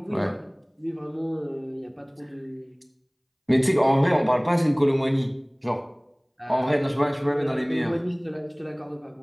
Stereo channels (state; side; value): identical; both; correlation 1.00